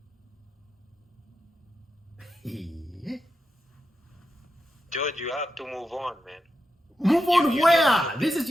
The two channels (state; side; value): normal; both; correlation 0.88